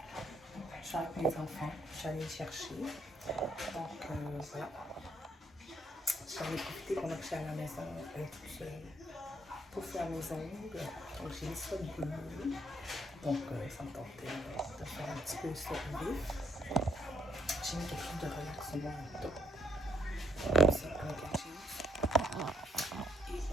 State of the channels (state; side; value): normal; both; correlation 0.70